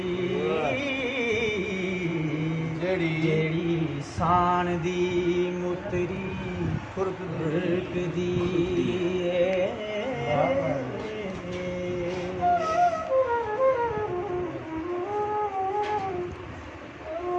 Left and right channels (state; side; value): identical; both; correlation 1.00